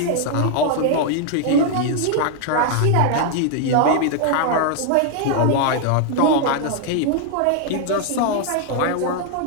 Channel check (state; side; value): different; both; correlation 0.00